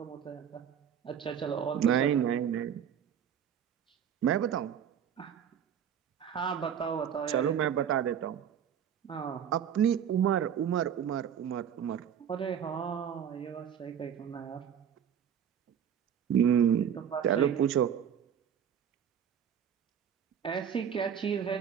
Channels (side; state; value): left; quieter; 8.6 dB